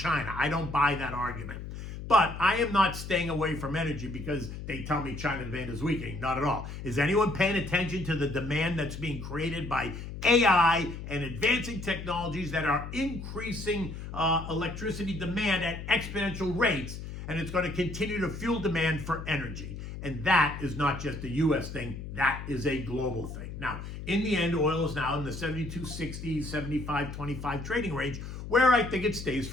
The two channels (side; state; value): left; noise; hum, 9 dB below the sound